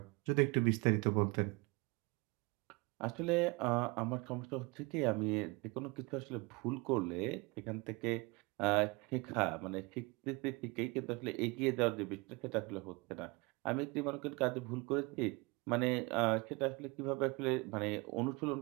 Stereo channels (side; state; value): left; quieter; 26.6 dB